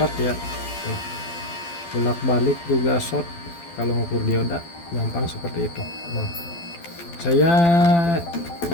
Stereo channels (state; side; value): late; right; 12 ms